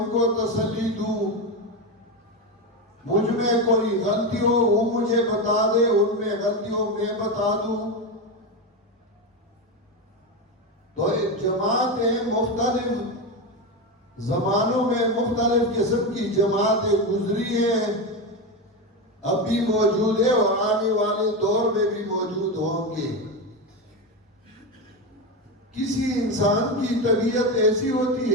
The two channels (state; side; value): normal; both; correlation 0.15